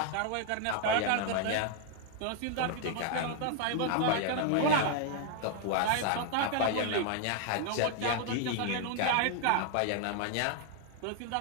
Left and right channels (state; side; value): different; both; correlation 0.00